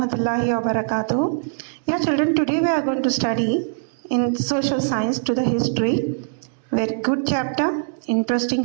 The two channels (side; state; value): left; silent; digital silence